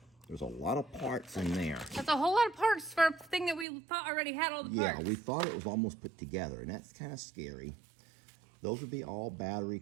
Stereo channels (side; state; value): left; drops out; at 3.7 s